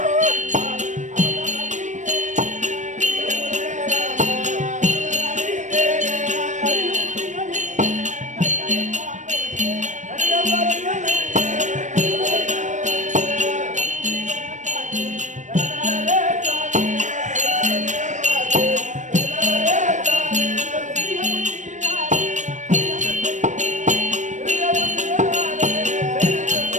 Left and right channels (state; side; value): late; left; 0.35 ms